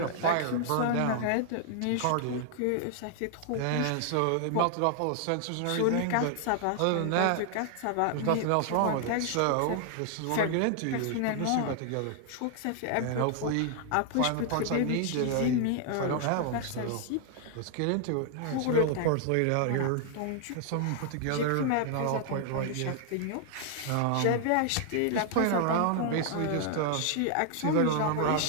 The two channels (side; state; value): both; different; correlation 0.00